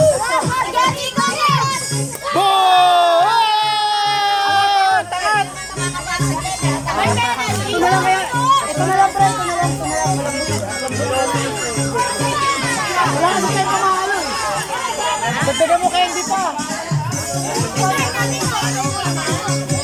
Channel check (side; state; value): both; identical; correlation 1.00